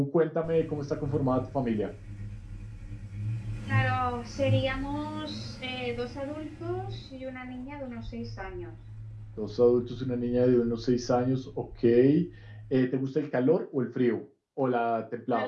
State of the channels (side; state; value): both; identical; correlation 1.00